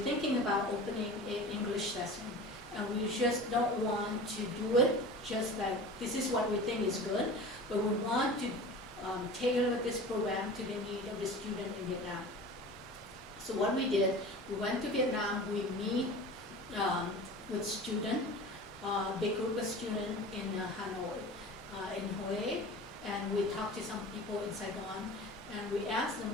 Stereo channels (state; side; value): normal; both; correlation 0.36